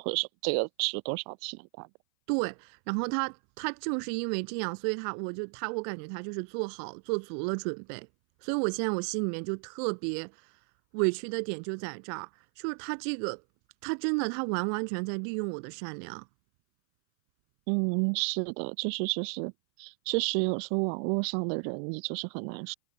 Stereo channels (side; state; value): left; silent; 56 dB below the other